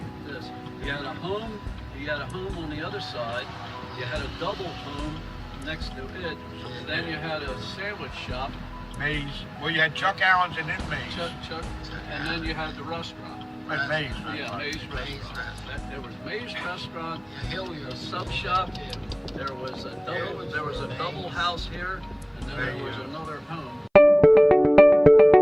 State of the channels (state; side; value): identical; both; correlation 1.00